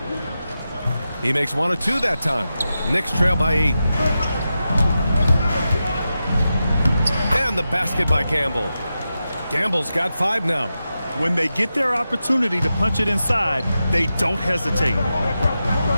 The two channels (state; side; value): inverted; both; correlation -0.90